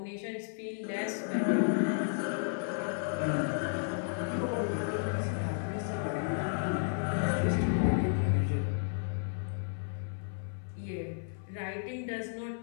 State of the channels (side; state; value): right; silent; 56 dB below the other